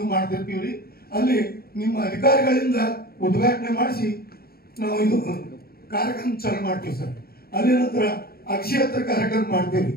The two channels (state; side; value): late; right; 0.44 ms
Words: ಮಾಡ್ತಿರ್ತೀವ್ರಿ. ಅಲ್ಲಿ ನಿಮ್ಮ ಅಧಿಕಾರಿಗಳಿಂದ ಉದ್ಘಾಟನೆ ಮಾಡಿಸಿ ನಾವು ಇದು ಕಾರ್ಯಕ್ರಮ ಚಾಲು ಮಾಡ್ತೀವಿ ಸರ್. ಅಲ್ಲಿ ನಂತರ ಅಕ್ಷಯತ್ರ ಕಾರ್ಯಕ್ರಮ ಮಾಡ್ತೀವಿ,